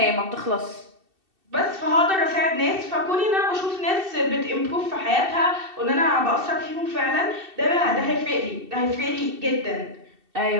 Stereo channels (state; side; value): late; left; 2.7 ms